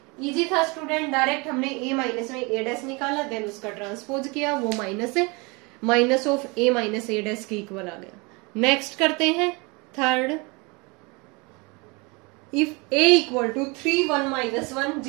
इजी था स्टूडेंट, डायरेक्ट हमने a माइनस में a डैश निकाला, देन उसका ट्रांसपोज किया, वो माइनस है, minus of a minus a dash के इक्वल आ गया। नेक्स्ट करते हैं third, if a equal to 3 1 minus 1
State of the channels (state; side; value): quieter; left; 27.8 dB